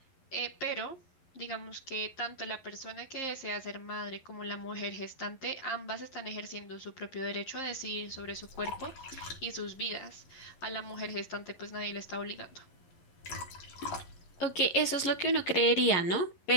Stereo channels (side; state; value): right; late; 11 ms